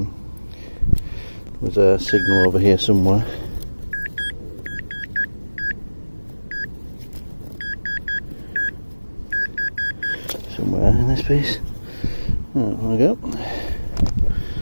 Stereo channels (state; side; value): inverted; both; correlation -1.00